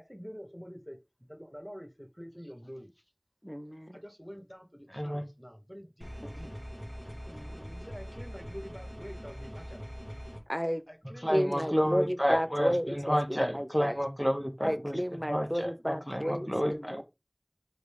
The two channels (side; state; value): both; identical; correlation 1.00